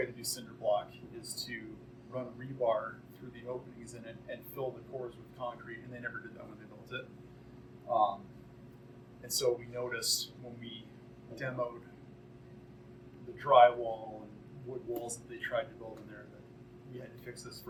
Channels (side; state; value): both; identical; correlation 1.00